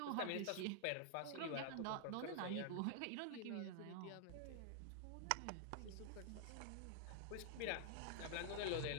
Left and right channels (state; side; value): different; both; correlation -0.01